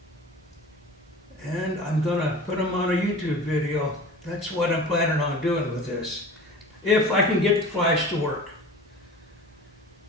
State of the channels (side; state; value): both; normal; correlation 0.38